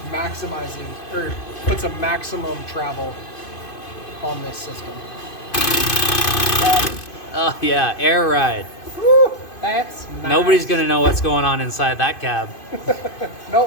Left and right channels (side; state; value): right; late; 2.5 ms